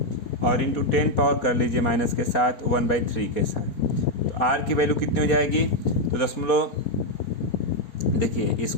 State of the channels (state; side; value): late; right; 4.2 ms